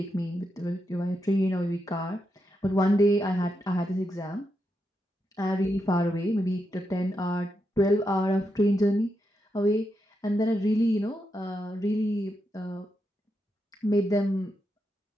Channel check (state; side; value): normal; both; correlation 0.84